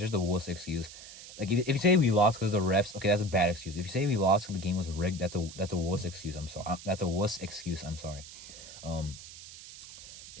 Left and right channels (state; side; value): noise; right; hiss, 15 dB below the sound